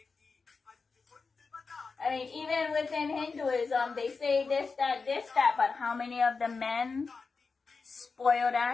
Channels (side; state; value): right; quieter; 4.6 dB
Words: I mean, even within Hinduism, they say this, that, but how many of the men, spoiled